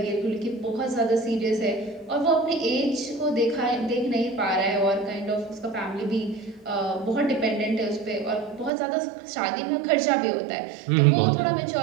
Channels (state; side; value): drops out; left; at 8.7 s